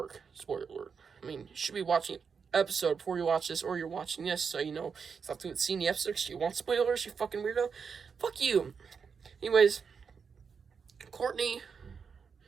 Spoiler alert. You should be watching episode before you watch this, or you're watching this, so you have to see the episode because you want spoilers, you fucking weirdo. Fuck you. Anyways, Courtney,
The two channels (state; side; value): quieter; left; 6.0 dB